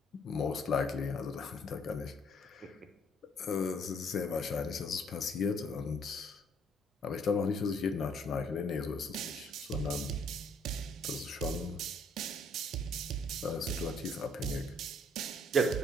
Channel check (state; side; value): normal; both; correlation 0.64